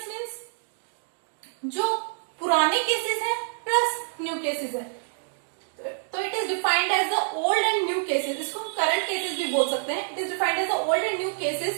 मीन्स जो पुराने केसेस हैं प्लस न्यू केसेस है। तो it is defined as the old and new cases, इसको हम करंट केसेस भी बोल सकते हैं। It is defined as the old and new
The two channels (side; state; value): left; silent; digital silence